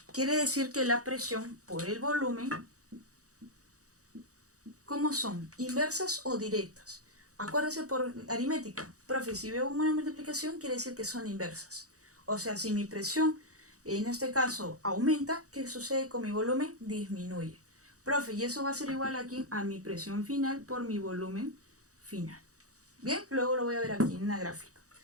Quiere decir que la presión por el volumen, ¿cómo son? ¿Inversas o directas? Acuérdese por aritmética. Profe, si veo una multiplicación, quiere decir que son inversas. O sea, si mi presión, en este caso, aumenta, ¿qué sucede con mi volumen? Disminuye. Profe, y eso va a ser igual aquí a mi presión final por mi volumen final. Bien, luego lo voy a ver aquí en una gráfica.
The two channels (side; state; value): left; late; 0.66 ms